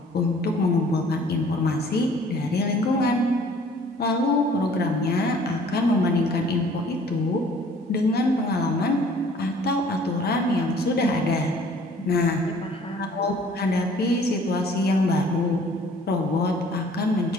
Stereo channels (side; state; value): both; normal; correlation 0.54